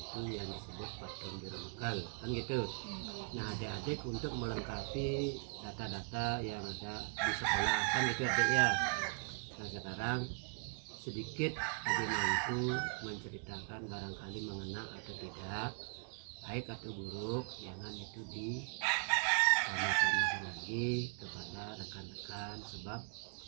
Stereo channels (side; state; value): left; silent; 51 dB below the other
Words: yang disebut patung Jero Mekal kan gitu. Nah adik-adik untuk melengkapi data-data yang ada di sekolah kan gitu adik ya. Nah sekarang sedikit Haji Mangku menceritakan barangkali mengena atau tidak, baik atau buruk, jangan itu di sama-sama lagi kepada rekan-rekan, sebab